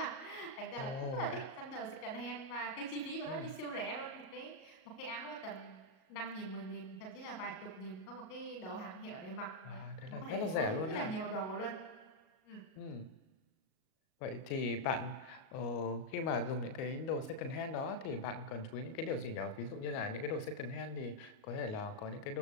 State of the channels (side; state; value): right; late; 38 ms